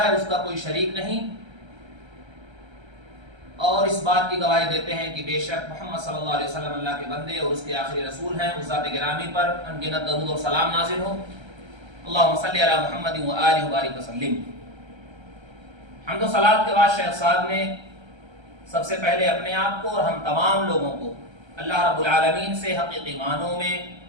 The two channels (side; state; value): left; late; 1.3 ms